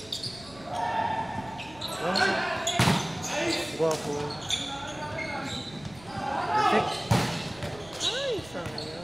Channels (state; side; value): noise; right; rumble, 22 dB below the sound